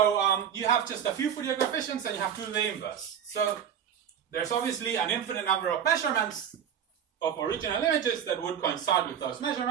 you have just a few Fourier coefficients and you have to do the inverse. So there's obviously an infinite number of measurements of original images that would coincide with those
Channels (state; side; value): quieter; left; 8.6 dB